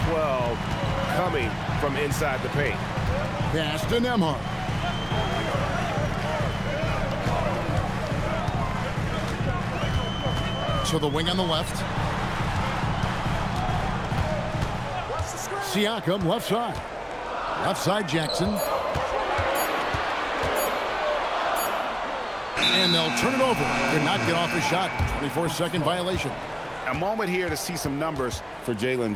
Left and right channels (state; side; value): identical; both; correlation 1.00